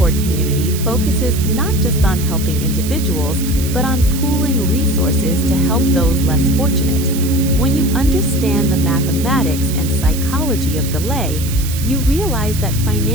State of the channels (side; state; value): right; noise; hiss, 10 dB below the sound